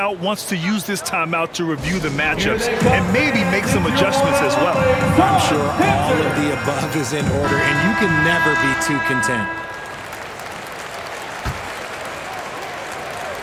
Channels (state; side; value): identical; both; correlation 1.00